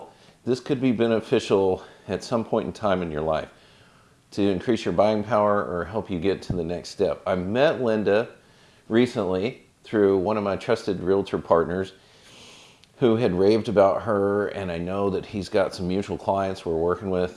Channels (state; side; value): identical; both; correlation 1.00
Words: this could be beneficial at some point in time in your life to increase your buying power or help you get to the next step. I met Linda recently through one of my trusted realtor partners who had raved about her, and I know that he's got some mutual clients we're working